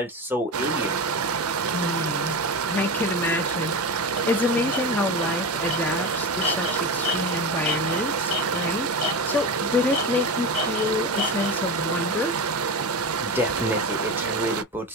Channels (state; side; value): normal; both; correlation 0.23